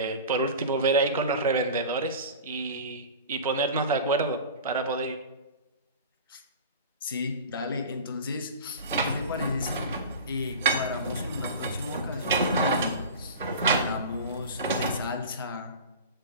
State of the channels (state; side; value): inverted; both; correlation -0.33